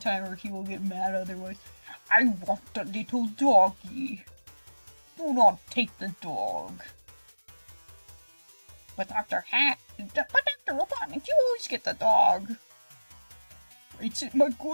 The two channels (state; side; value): inverted; both; correlation -1.00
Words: or he will get mad otherwise. I want the little doggy. Do not take the dog. But Dr. Robotnik, you always get the dog. It's my